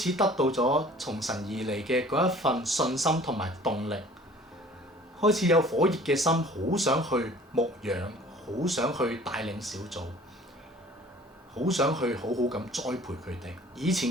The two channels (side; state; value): both; normal; correlation 0.50